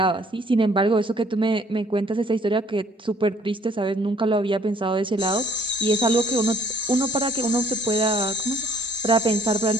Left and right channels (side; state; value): both; normal; correlation 0.61